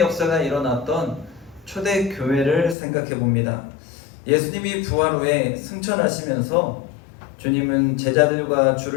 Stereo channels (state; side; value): drops out; right; at 2.8 s